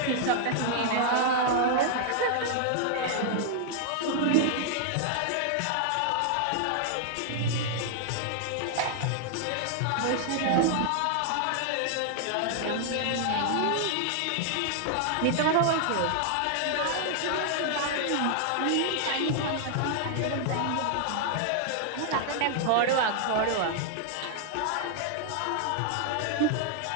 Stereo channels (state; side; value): different; both; correlation 0.00